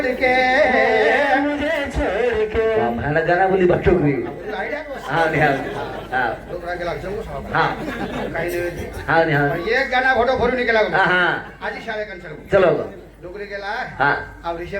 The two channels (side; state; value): both; identical; correlation 1.00